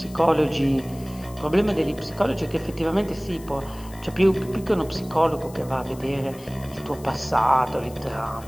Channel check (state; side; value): noise; left; hiss, 21 dB below the sound